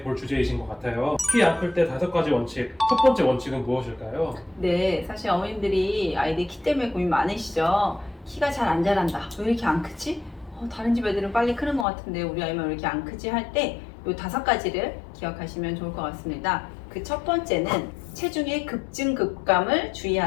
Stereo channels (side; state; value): right; drops out; at 11.9 s